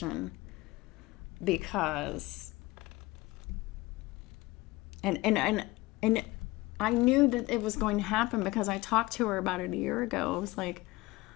because and I knew that it was going to happen because I talked to her about it a year ago. I was like,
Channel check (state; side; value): quieter; right; 20.3 dB